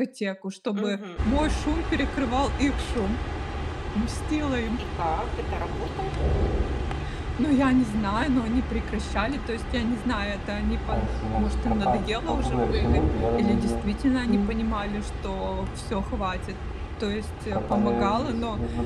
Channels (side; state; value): both; identical; correlation 1.00